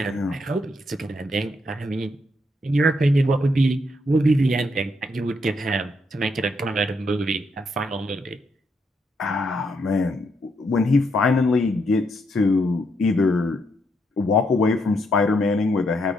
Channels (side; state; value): both; normal; correlation 0.77